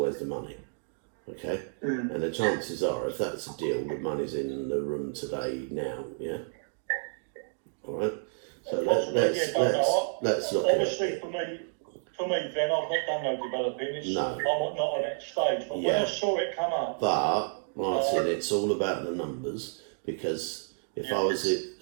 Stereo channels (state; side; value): silent; left; digital silence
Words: the money, okay? And the chances are, if that's a deal, the money's in the room today, now, yeah? All right? So let's look obviously, at it. for me, Ben, I've not done no developing. I'm not at that stage. But when I saw it come up, but Martin, it's all about the numbers, because if I